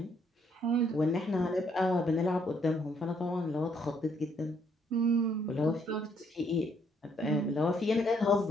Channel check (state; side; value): normal; both; correlation 0.69